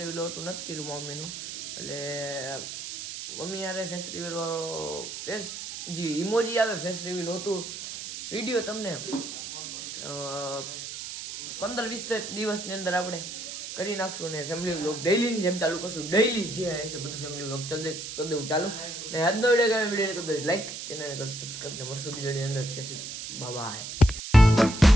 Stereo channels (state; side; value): noise; right; hiss, 8 dB below the sound